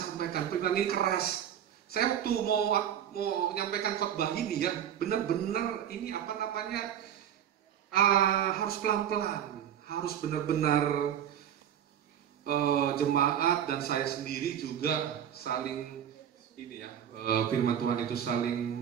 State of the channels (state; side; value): quieter; left; 9.7 dB